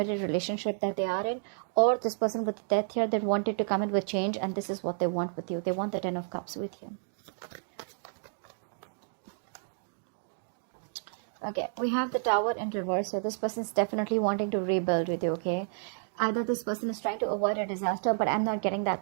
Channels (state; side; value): silent; left; digital silence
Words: relationship that they are in, or this person with the Death here that wanted to come in with change, and this is what they want with you. They want the 10 of Cups with you. Okay, we have the Tower in reverse. So this person is definitely wanting to rebuild with you, okay? Either this person is trying to avoid a disaster, but I'm not getting